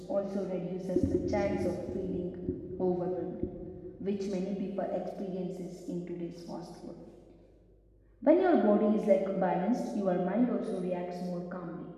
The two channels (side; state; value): both; identical; correlation 1.00